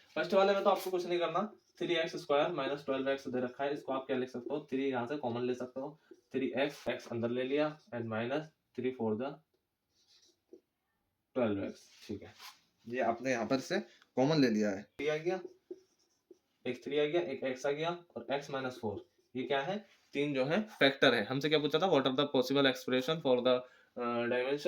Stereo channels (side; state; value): both; identical; correlation 1.00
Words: फर्स्ट वाले में तो आपको कुछ नहीं करना, 3x स्क्वायर माइनस 12x दे रखा है, इसको आप क्या लिख सकते हो, 3 यहाँ से कॉमन ले सकते हो, 3x x अंदर ले लिया एंड माइनस 3 4 12x। ठीक है, ये आपने यहाँ पर से कॉमन ले लिया है, 3 आ गया, एक 3 आ गया, एक x आ गया और x माइनस 4। ये क्या है, तीन जो है फैक्टर है। हमसे क्या पूछा था, what are the possible expression for the